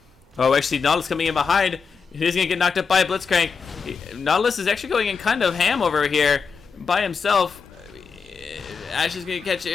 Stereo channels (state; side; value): quieter; right; 5.5 dB